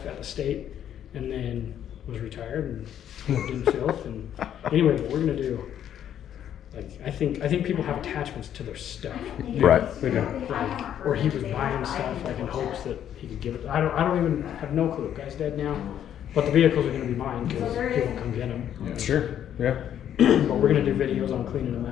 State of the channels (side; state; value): right; quieter; 10.1 dB